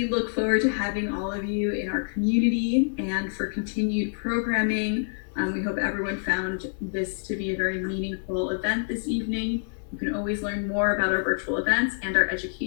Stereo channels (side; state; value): right; silent; 59 dB below the other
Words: look forward to having all of you in our community and for continued programming. We hope everyone found this to be a very meaningful event this evening. You can always learn more about our virtual events and our